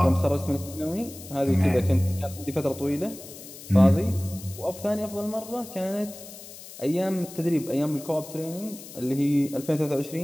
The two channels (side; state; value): left; noise; hiss, 15 dB below the sound